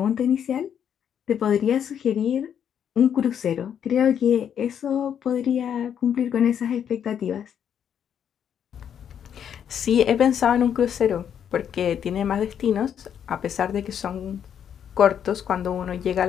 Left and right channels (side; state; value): right; quieter; 8.7 dB